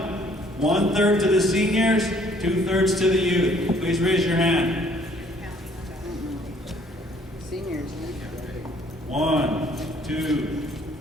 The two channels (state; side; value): normal; both; correlation 0.61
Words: 1/3 to the seniors, 2/3 to the youth. Please raise your hand. Seniors. 1, 2,